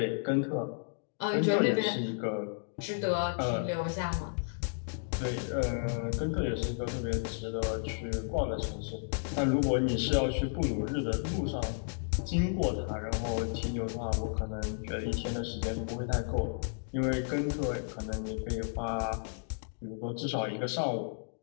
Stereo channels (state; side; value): silent; right; digital silence